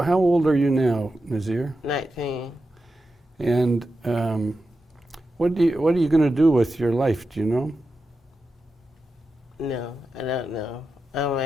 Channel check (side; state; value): both; normal; correlation 0.90